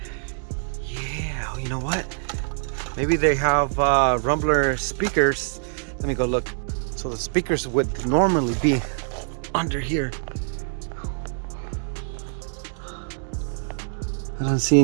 Yeah, you know what? Maybe they have Rumbler speakers. Let me go look. So the speakers would normally be under here. I don't see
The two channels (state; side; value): silent; left; 56 dB below the other